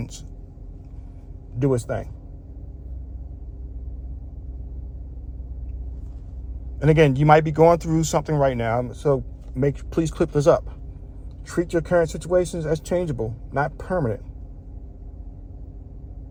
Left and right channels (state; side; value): identical; both; correlation 1.00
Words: do its thing. And again, you might be going through something right now, so please clip this up. Treat your current situations as changeable, not permanent.